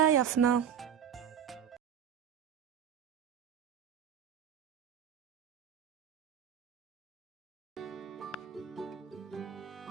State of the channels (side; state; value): left; quieter; 8.5 dB